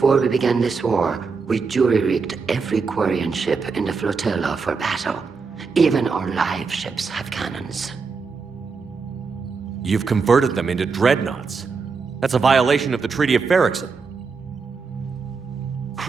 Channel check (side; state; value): left; quieter; 4.9 dB